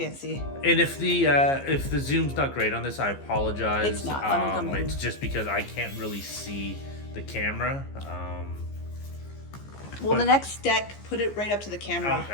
And if the zoom's not great on this, I apologize. It's not. Let me come in. It's just because I can't really see the camera. Well, the next deck, put it right up to the camera.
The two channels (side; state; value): right; late; 15 ms